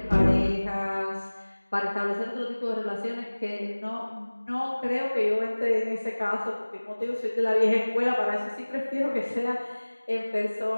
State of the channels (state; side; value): inverted; both; correlation -1.00